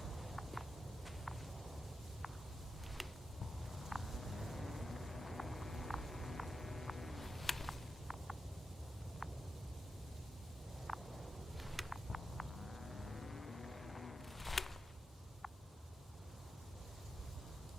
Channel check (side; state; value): both; normal; correlation 0.89